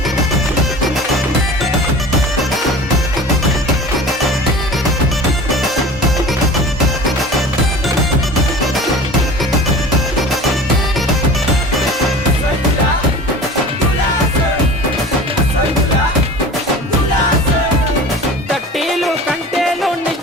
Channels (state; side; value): normal; both; correlation 0.39